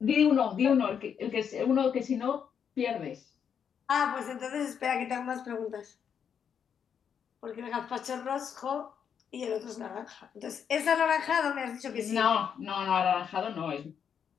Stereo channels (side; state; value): right; quieter; 7.6 dB